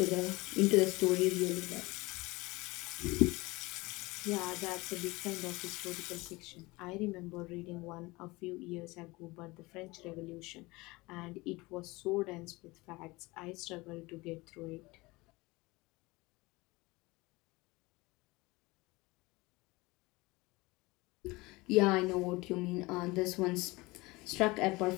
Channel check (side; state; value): right; quieter; 22.6 dB